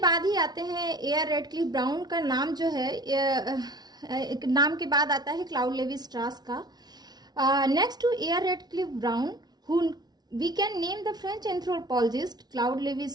ही आते हैं ए.आर. रेडक्लिफ ब्राउन का नाम जो है नाम के बाद आता है क्लाउड लेवी स्ट्रास का। Next to A R. Radcliffe Brown who we can name the French anthropologist Claude Levi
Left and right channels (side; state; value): left; late; 0.19 ms